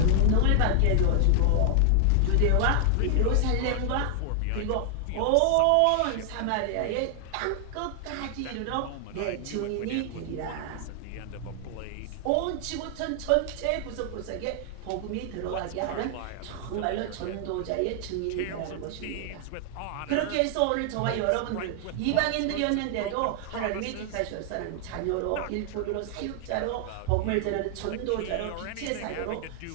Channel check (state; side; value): different; both; correlation 0.00